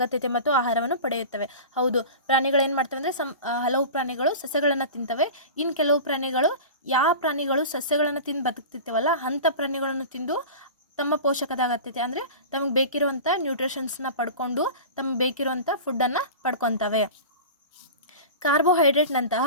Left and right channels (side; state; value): both; inverted; correlation -0.33